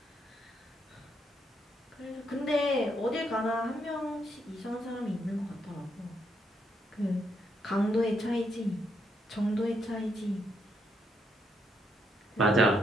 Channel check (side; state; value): both; normal; correlation 0.77